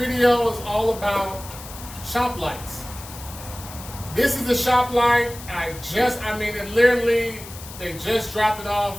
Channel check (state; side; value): noise; left; hiss, 15 dB below the sound